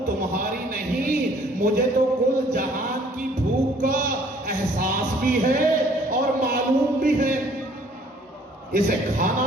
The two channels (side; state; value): both; normal; correlation 0.58